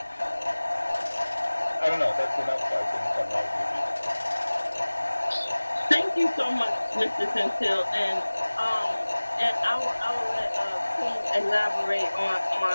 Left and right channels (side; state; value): both; inverted; correlation -1.00